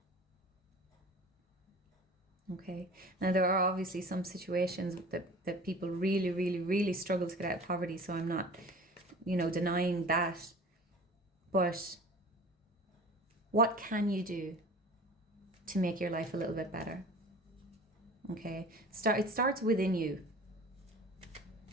Okay, now there are obviously some situations that people really, really, really struggle to get out of poverty, so I'm not, you know, denying that. But what can you do to make your life a little bit better? Okay, it starts within you.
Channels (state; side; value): normal; both; correlation 0.41